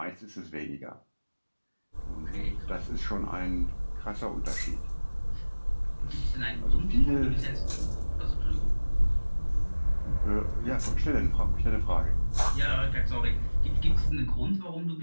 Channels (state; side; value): inverted; both; correlation -1.00